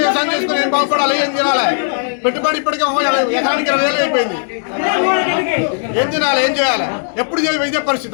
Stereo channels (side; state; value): right; silent; digital silence